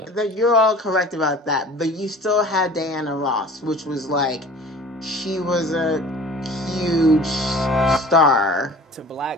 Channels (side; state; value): both; normal; correlation 0.44